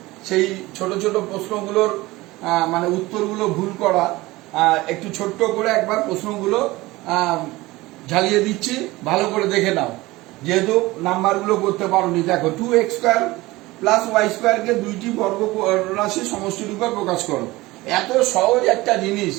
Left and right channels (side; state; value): left; quieter; 19.8 dB